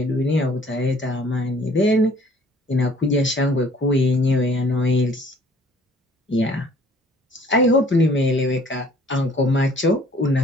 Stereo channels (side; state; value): both; normal; correlation 0.56